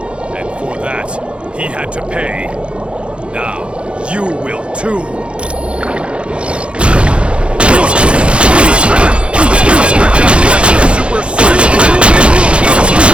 and for that, he had to pay. Now, you will too.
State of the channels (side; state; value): left; late; 0.058 ms